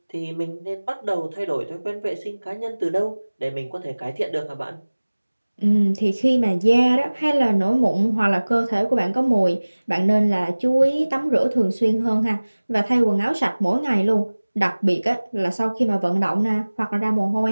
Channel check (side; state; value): both; inverted; correlation -1.00